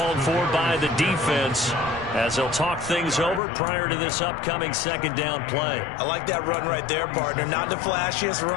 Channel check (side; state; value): right; drops out; at 3.4 s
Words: for by the defense as they'll talk things over prior to this upcoming 2nd down play. I like that run right there, partner. Not the flashiest